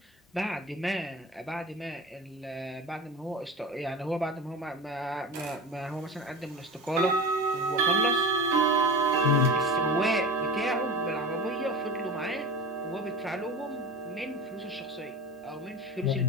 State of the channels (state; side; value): normal; both; correlation 0.30